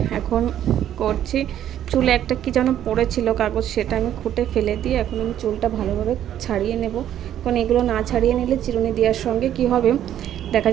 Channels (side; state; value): left; quieter; 11.0 dB